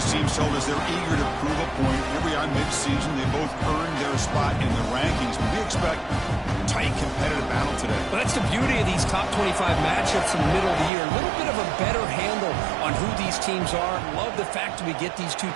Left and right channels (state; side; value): drops out; left; at 10.9 s